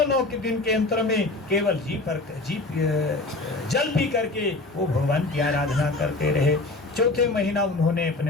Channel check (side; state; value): right; quieter; 3.1 dB